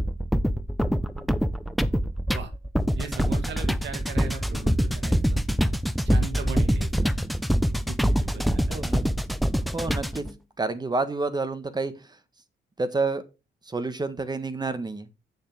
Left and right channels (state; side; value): normal; both; correlation 0.91